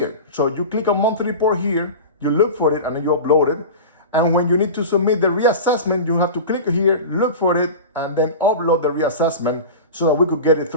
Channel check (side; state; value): both; inverted; correlation -0.30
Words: So you click on monthly report here, you look for it, and then you upload it. And when you need to submit the reassessment, you have to click here, look for it, and then upload the reassessment so that we could get it